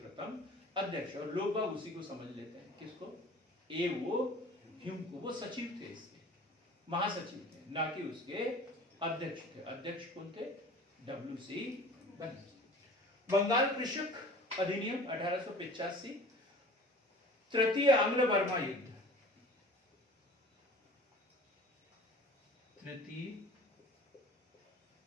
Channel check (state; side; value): normal; both; correlation 0.44